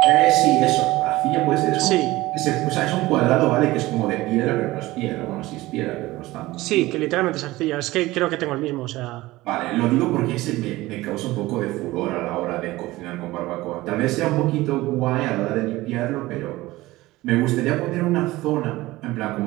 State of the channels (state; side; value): quieter; left; 18.6 dB